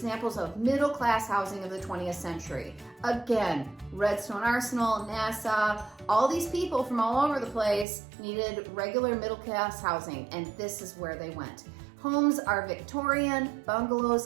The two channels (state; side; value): drops out; left; at 7.9 s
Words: of middle-class housing of the 20th century. Again, Redstone Arsenal, NASA, all these people from all over the place needed regular middle-class housing, and this is where they went. Homes are Victorian,